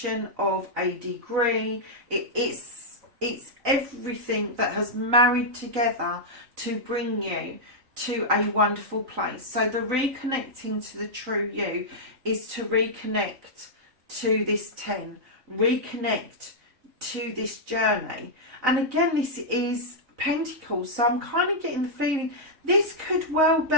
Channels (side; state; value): left; late; 3.9 ms